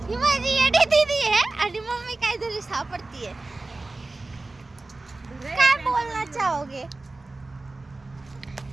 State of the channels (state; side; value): quieter; left; 3.2 dB